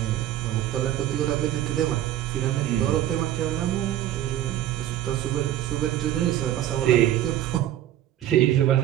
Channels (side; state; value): left; quieter; 12.5 dB